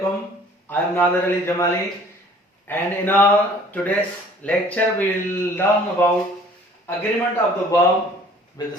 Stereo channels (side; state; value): both; normal; correlation 0.53